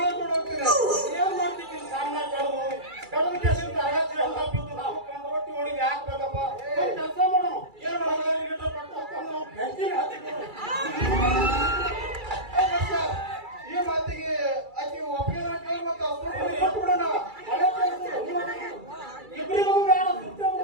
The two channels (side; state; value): left; late; 2.3 ms